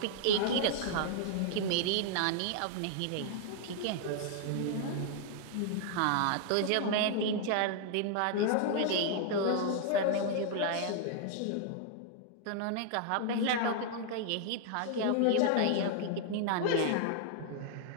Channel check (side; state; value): both; different; correlation 0.00